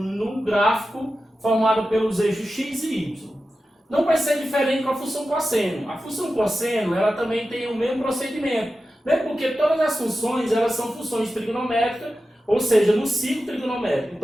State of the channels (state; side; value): normal; both; correlation 0.93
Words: gráfico formado pelos eixos x e y. Não vai ser diferente com a função cosseno. A função cosseno ela também tem o mesmo procedimento, né? Porque todas as funções elas são funções trigonométricas, ou seja, no ciclo trigonométrico.